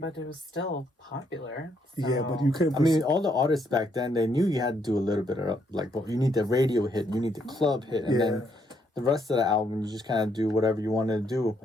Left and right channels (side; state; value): both; normal; correlation 0.73